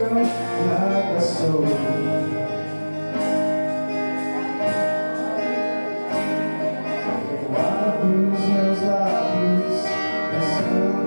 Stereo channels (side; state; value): both; inverted; correlation -1.00